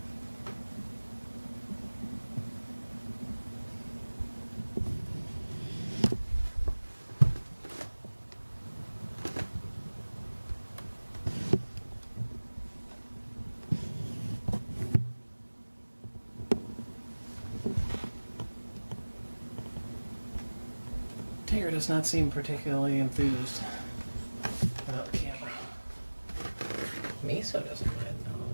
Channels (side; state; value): both; inverted; correlation -1.00